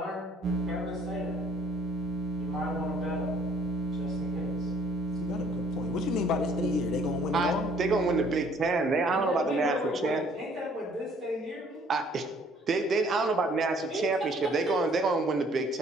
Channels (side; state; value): both; normal; correlation 0.59